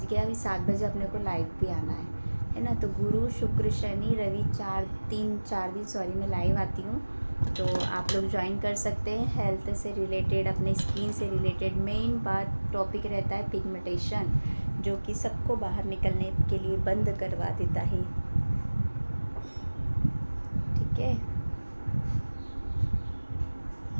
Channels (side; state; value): both; inverted; correlation -1.00